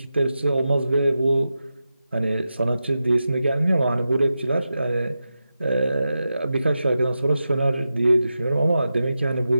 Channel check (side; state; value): both; inverted; correlation -0.91